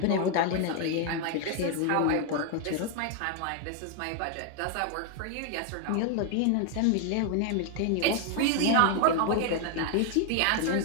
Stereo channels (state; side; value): different; both; correlation 0.00